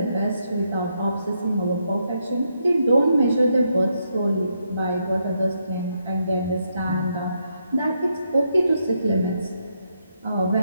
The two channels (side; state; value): both; inverted; correlation -0.79